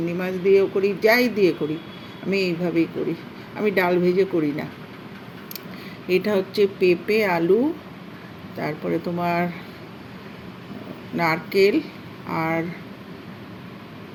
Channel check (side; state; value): both; identical; correlation 1.00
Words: মাছ দিয়েও করি, যাই দিয়ে করি, আমি এইভাবেই করি। আমি ডাল ভেজে করি না। এটা হচ্ছে পেঁপে, আলু, তারপরে তোমার নারকেল আর